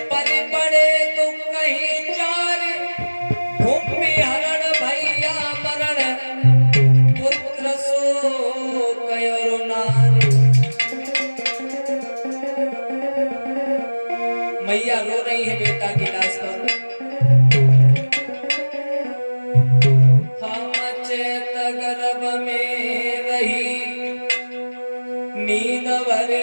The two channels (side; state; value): both; inverted; correlation -1.00